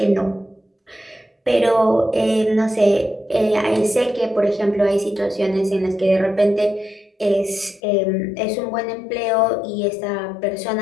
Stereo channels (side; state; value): right; drops out; at 7.8 s